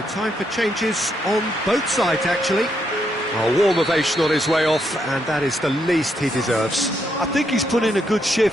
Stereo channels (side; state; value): both; normal; correlation 0.78